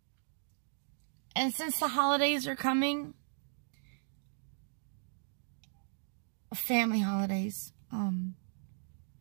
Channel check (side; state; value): left; silent; digital silence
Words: And since the holidays are coming, family holidays,